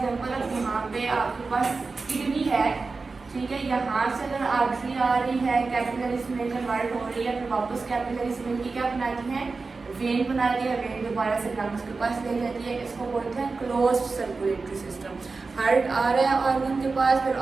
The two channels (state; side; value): quieter; left; 4.1 dB